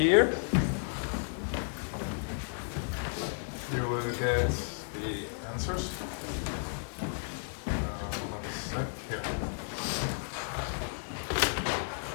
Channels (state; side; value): silent; right; digital silence